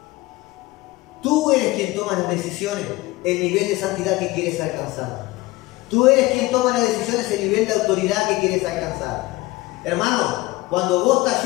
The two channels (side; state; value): right; quieter; 20.3 dB